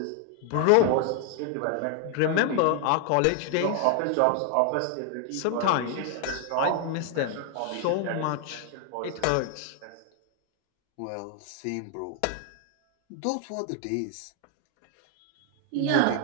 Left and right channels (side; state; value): both; different; correlation 0.00